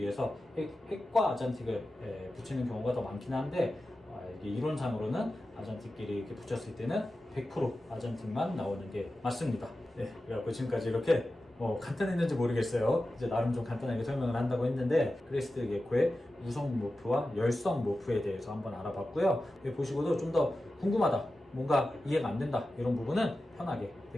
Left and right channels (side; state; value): both; normal; correlation 0.93